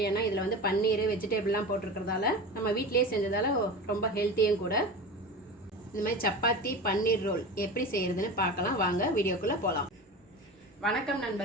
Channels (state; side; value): normal; both; correlation 0.29